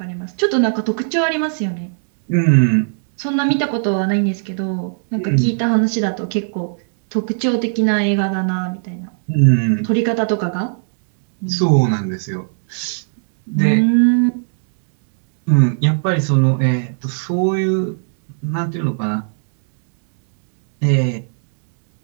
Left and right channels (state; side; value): silent; left; digital silence